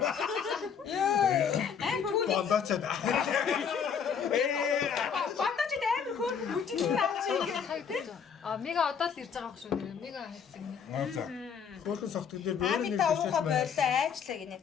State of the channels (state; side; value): quieter; right; 7.0 dB